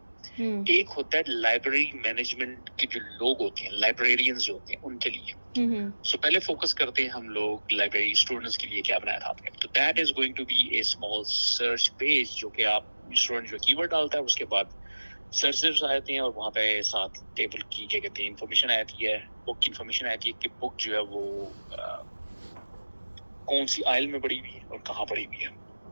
ایک ہوتا ہے لائبریری مینجمنٹ کے جو لوگ ہوتے ہیں, لائبریرینز جو ہوتے ہیں ان کے لیے. سو پہلے فوکس کرتے ہیں ہم لوگ لائبریری اسٹوڈنٹس کے لیے کیا بنایا تھا آپ نے. تو that is going to be a small search page جو کہ آپ اسٹوڈنٹ جو کی ورڈ ڈالتا ہے اس کے بعد سرچز آتے ہیں اور وہاں پہ ساتھ ٹیبل کی کیا کہتے ہیں انفارمیشن آتی ہے, بک کی انفارمیشن آتی ہے کہ بک جو ہے وہ کون سی آئل میں پڑی ہوئی ہے اور کہاں پڑی ہوئی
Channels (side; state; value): both; inverted; correlation -1.00